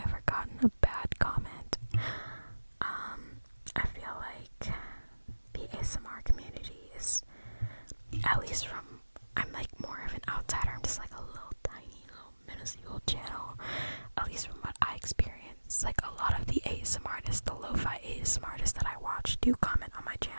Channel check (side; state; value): both; inverted; correlation -1.00